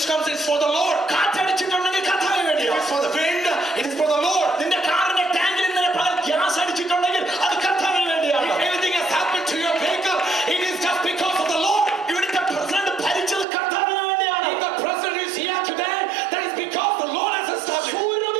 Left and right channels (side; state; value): left; drops out; at 13.5 s